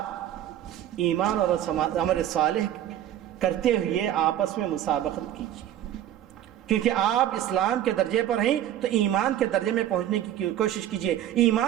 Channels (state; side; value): quieter; left; 11.7 dB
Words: ایمان اور عمل صالح کرتے ہوئے آپس میں مسابقت کیجیے، کیونکہ آپ اسلام کے درجے پر ہیں تو ایمان کے درجے میں پہنچنے کی کوشش کیجیے.